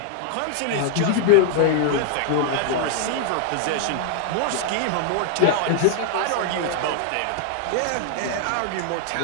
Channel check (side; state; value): both; different; correlation 0.00